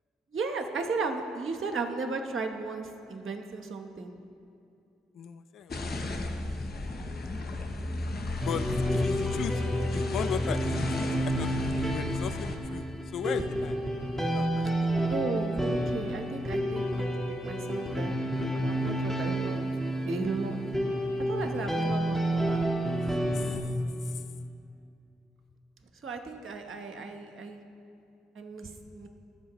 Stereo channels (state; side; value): normal; both; correlation 0.80